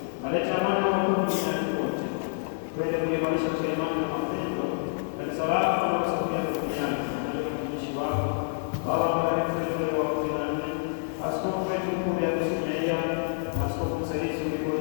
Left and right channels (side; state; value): right; silent; digital silence